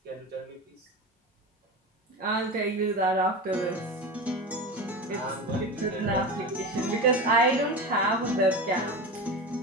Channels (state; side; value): normal; both; correlation 0.26